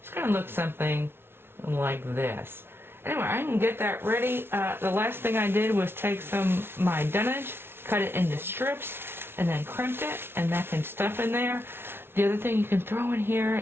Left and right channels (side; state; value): left; late; 0.11 ms